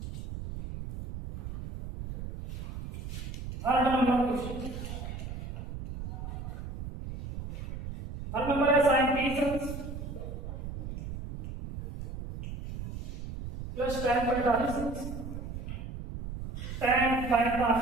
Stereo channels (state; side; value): noise; right; rumble, 8 dB below the sound